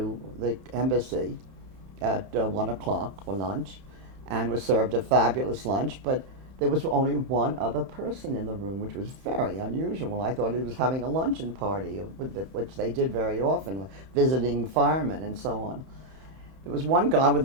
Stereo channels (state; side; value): late; left; 31 ms